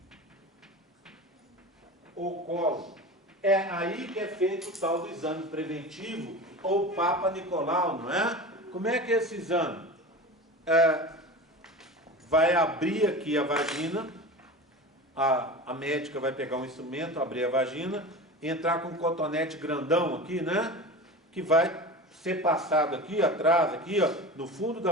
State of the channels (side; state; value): both; normal; correlation 0.31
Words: Ou colo. É aí que é feito o tal do exame preventivo, ou Papa Nicolau, não é? Como é que é esse exame? Vai abrir aqui a vagina, a médica vai pegar um instrumento, abrir a vagina, entrar com um cotonete grandão aqui, né? Que vai ser passado aqui atrás, aqui, ó, no fundo da